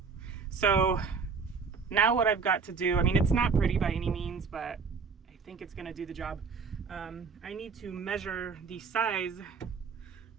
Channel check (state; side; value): quieter; left; 5.3 dB